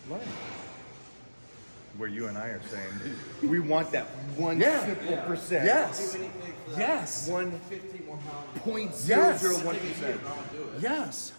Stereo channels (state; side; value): inverted; both; correlation -1.00